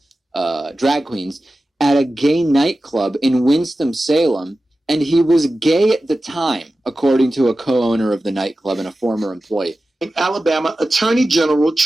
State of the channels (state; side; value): normal; both; correlation 0.94